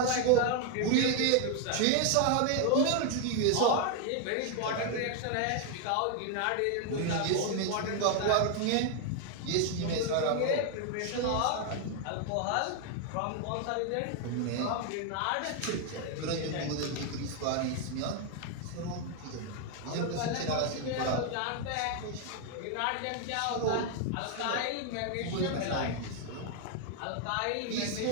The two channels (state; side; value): different; both; correlation 0.01